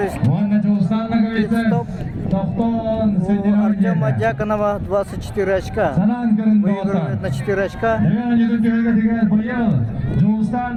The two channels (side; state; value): both; identical; correlation 1.00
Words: стоп. У Артема Дьяконова 24 очка. Выигрывает на 4 очка. Если